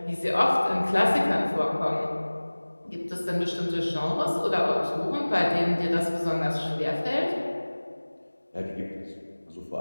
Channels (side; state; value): both; inverted; correlation -1.00